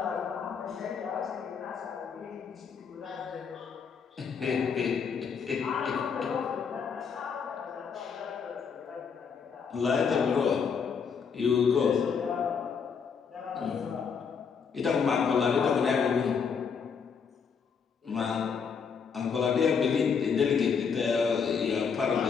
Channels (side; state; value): right; quieter; 6.3 dB